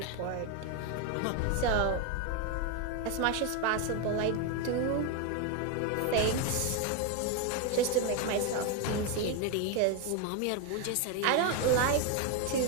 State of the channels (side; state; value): both; different; correlation 0.01